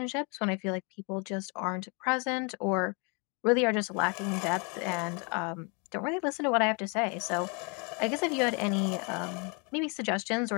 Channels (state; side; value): quieter; right; 33.7 dB